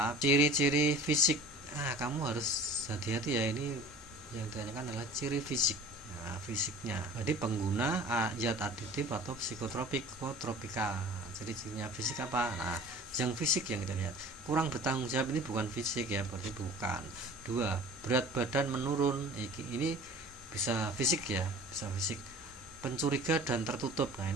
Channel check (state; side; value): normal; both; correlation 0.44